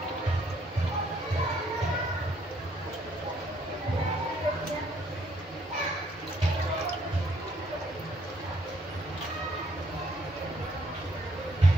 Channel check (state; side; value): normal; both; correlation 0.68